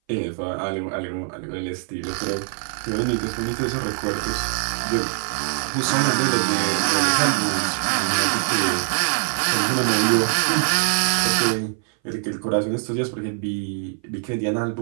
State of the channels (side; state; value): left; silent; 59 dB below the other